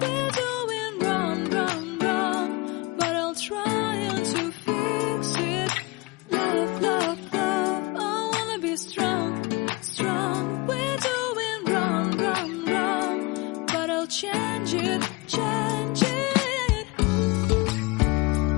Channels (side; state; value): right; quieter; 24.2 dB